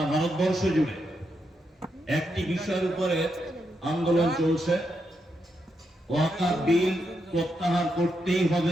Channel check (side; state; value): both; normal; correlation 0.82